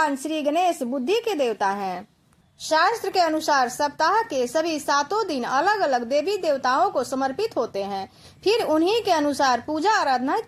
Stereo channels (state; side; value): identical; both; correlation 1.00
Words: श्री गणेश बुद्धि के देवता हैं। शास्त्र के अनुसार सप्ताह के सभी 7 दिन अलग अलग देवी देवताओं को समर्पित होते हैं, फिर उन्हीं के अनुसार पूजा आराधना